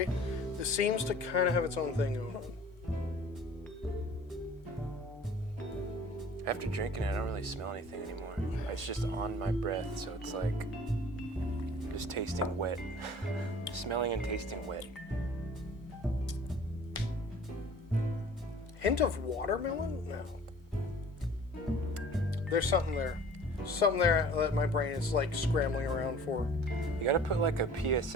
This seems to kind of have its own thing going on. After drinking it, I don't really smell anything anymore. It's just on my breath, so it's like just tasting wet. Smelling and tasting wet. Hint of watermelon? No. There's something there. Something there that my brain is like scrambling around for. You gotta put like a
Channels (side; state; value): both; normal; correlation 0.48